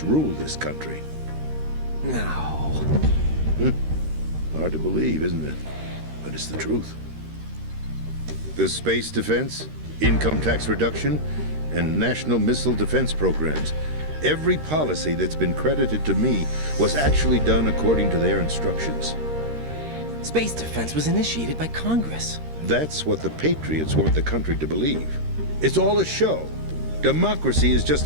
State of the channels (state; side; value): late; left; 13 ms